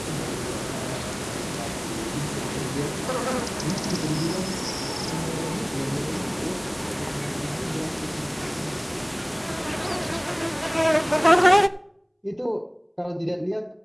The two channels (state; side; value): identical; both; correlation 1.00